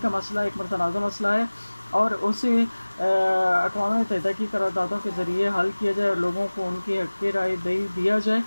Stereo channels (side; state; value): both; inverted; correlation -1.00